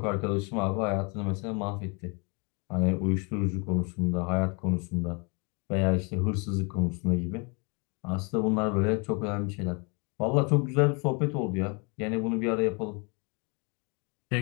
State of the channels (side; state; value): right; quieter; 32.8 dB